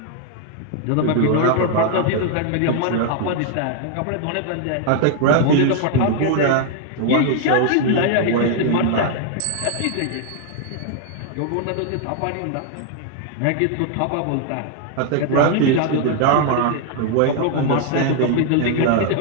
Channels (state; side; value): different; both; correlation 0.00